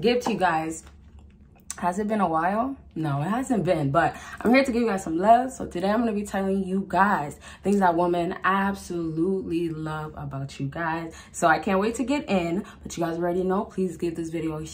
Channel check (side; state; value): both; identical; correlation 1.00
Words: to you guys. Has it been a while? No, it hasn't been, but I'm here to give you guys some love. So today I'm going to be telling you guys things that women absolutely love about you guys. So I can't wait to get in, but you guys already know, please give this video a